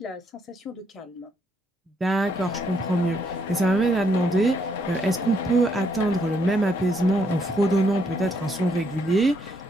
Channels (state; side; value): normal; both; correlation 0.73